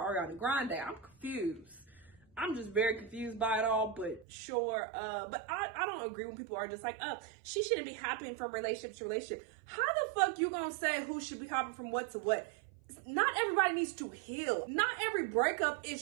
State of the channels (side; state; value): left; drops out; at 4.2 s